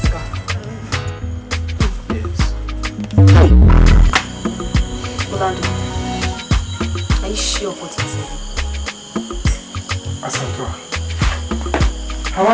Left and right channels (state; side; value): identical; both; correlation 1.00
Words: Orlando, are you sure of what you're saying? Asantua, have I